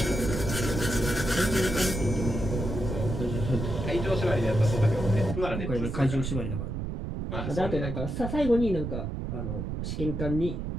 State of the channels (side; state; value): right; noise; rumble, 4 dB below the sound